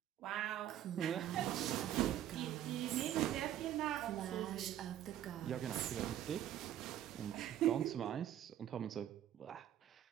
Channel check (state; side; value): quieter; left; 11.6 dB